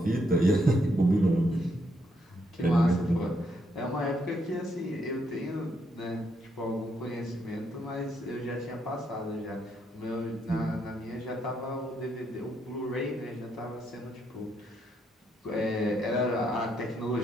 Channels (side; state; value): both; normal; correlation 0.76